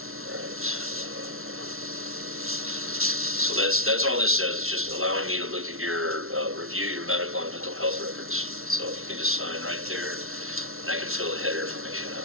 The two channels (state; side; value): late; left; 0.62 ms